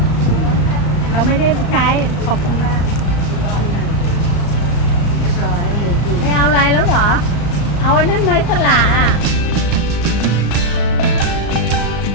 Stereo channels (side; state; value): right; late; 34 ms